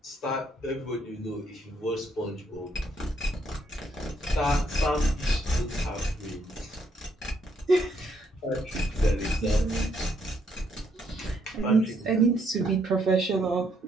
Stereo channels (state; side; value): normal; both; correlation 0.72